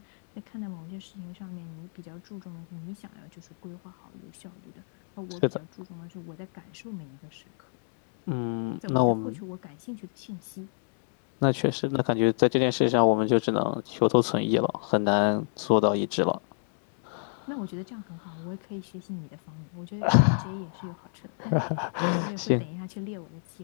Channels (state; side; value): silent; right; 58 dB below the other